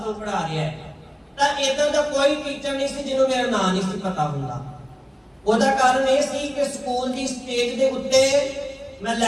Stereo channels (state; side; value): identical; both; correlation 1.00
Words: ਤੋਂ ਪੜ੍ਹਾ ਰਿਹਾ ਹੈ, ਤਾਂ ਇਦਾਂ ਦਾ ਕੋਈ ਟੀਚਰ ਨਹੀਂ ਸੀ ਜਿਹਨੂੰ ਮੇਰਾ ਨਾਂ ਨਹੀਂ ਸੀ ਪਤਾ ਹੁੰਦਾ। ਉਹਦਾ ਕਾਰਨ ਇਹ ਸੀ ਕਿ ਸਕੂਲ ਦੀ ਸਟੇਜ ਦੇ ਉੱਤੇ ਮੈਂ